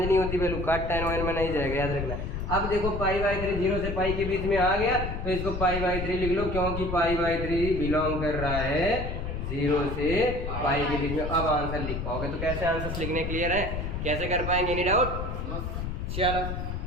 नहीं होती वैल्यू, कॉट tan 1 में नहीं जाएगा, याद रखना। अब देखो पाई बाई 3 0 से पाई के बीच में आ गया, तो इसको पाई बाई 3 लिख लो, क्योंकि पाई बाई 3 बिलोंग कर रहा है 0 से पाई के बीच में। अब आंसर लिख पाओगे। तो कैसे आंसर लिखने क्लियर है, कैसे कर पाएंगे, एनी डाउट। चलो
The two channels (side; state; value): left; noise; rumble, 4 dB below the sound